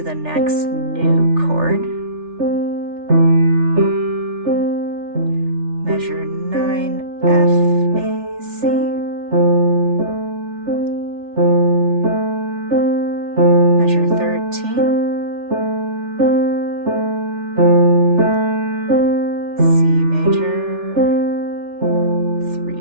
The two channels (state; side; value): late; left; 3.4 ms